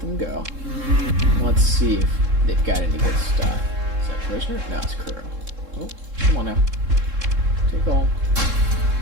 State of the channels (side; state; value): left; late; 3.7 ms